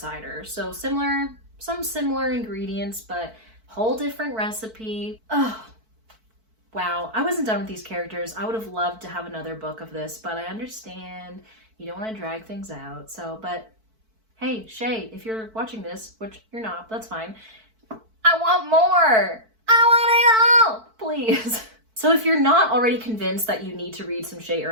So some similar ingredients, but whole different recipe. Oh, wow. I wasn't done with these characters. I would have loved to have another book of this, but I understand you don't want to drag things out. So, but hey, Shae, if you're watching this, which you're not, that's fine. I want more. I want it all, please. So if you're not already convinced that you need to read some Shae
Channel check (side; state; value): left; late; 4.5 ms